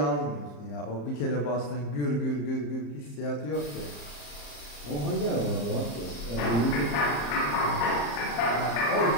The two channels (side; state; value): right; late; 34 ms